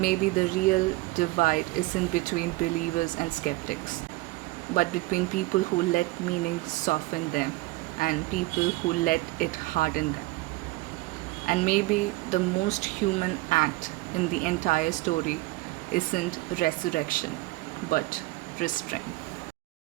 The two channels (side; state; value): left; quieter; 20.4 dB